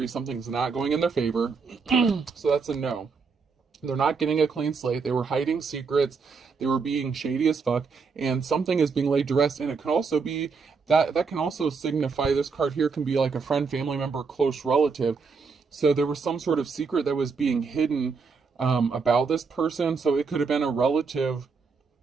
Something's not going in their favor. So that's a no. They're not getting a clean slate. They were hiding secrets. They were being shady as fuck. And something is being laid to rest. And it can also be, that can also signify, this card here can be like a friend, family member, close relative. So there was some sort of secret that was being hidden about this person. So it could have been a relative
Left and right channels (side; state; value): left; quieter; 5.1 dB